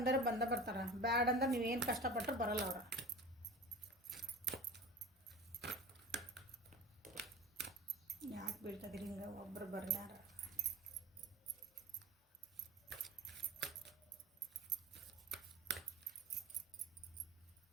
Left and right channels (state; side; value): normal; both; correlation 0.35